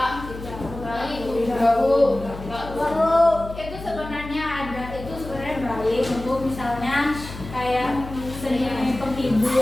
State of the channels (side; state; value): left; noise; hum, 12 dB below the sound